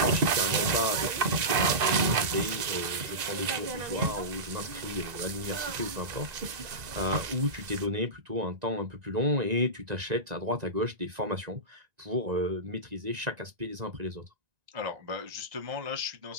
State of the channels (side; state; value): left; late; 1.9 ms